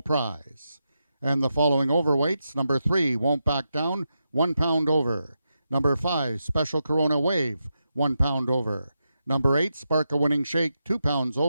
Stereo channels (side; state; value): both; inverted; correlation -0.87